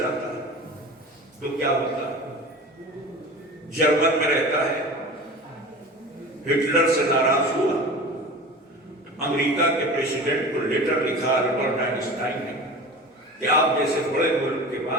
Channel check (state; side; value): normal; both; correlation 0.35